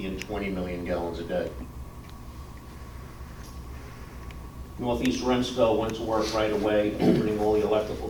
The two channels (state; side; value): identical; both; correlation 1.00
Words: and 20 million gallons a day. Northeast Remsco went to work right away, opening all the electrical